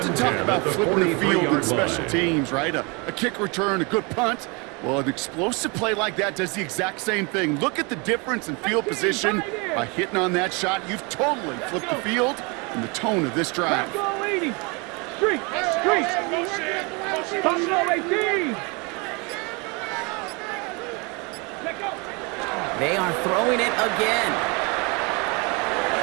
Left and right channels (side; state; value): left; quieter; 29.7 dB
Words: talk about flipping the field in special teams, right? A kick return, a good punt. Well, an explosive play like that does the exact same thing. Look at the difference in field position. By hitting on that shot, you've totally flipped the field and the tone of this drive. Street, Buffalo 18. They are throwing it again.